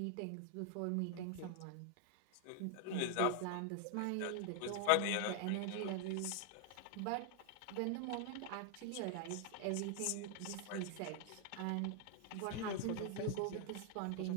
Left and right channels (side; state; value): both; different; correlation 0.00